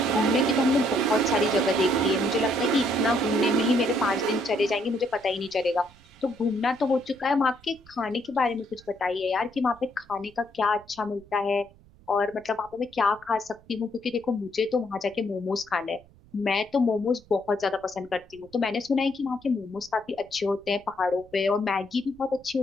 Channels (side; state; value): right; noise; rumble, 26 dB below the sound